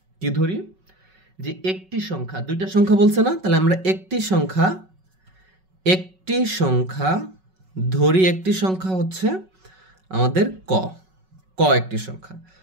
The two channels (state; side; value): late; left; 5.4 ms